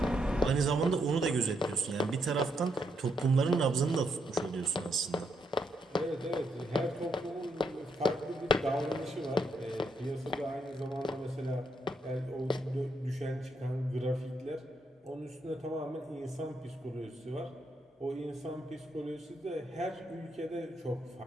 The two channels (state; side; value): normal; both; correlation 0.78